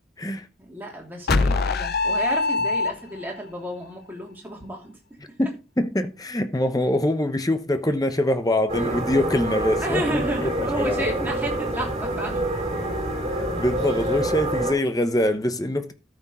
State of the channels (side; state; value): both; normal; correlation 0.54